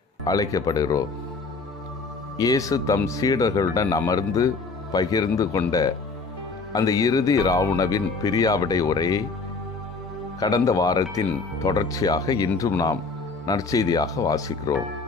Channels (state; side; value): quieter; right; 4.1 dB